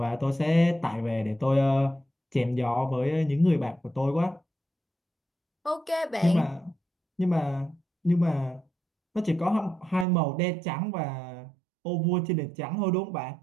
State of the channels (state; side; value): drops out; left; at 10.1 s